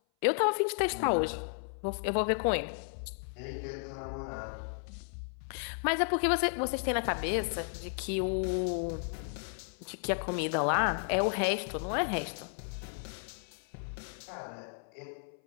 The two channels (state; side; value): silent; right; 55 dB below the other